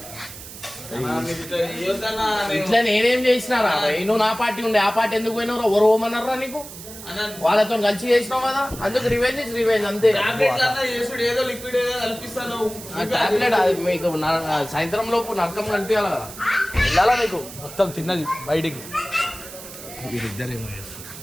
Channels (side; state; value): right; noise; hiss, 14 dB below the sound